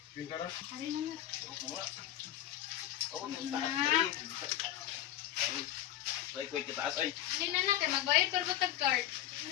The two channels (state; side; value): quieter; right; 12.6 dB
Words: Pinta na? Hari na nga. Hindi na na, kaya magbayad pero ba tag-card?